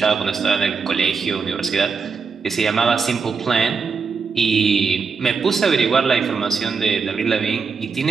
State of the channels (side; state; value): left; quieter; 5.2 dB